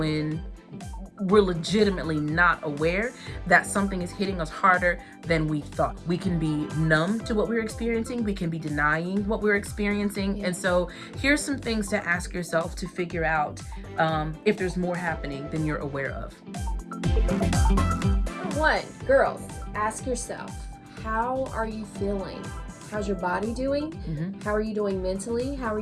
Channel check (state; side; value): identical; both; correlation 1.00